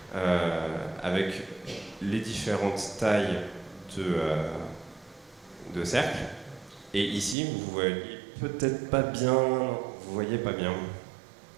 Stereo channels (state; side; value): drops out; left; at 7.4 s